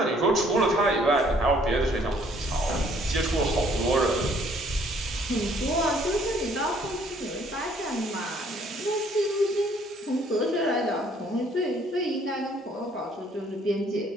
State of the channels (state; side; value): normal; both; correlation 0.62